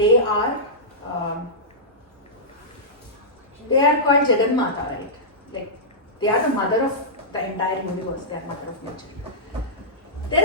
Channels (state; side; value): normal; both; correlation -0.15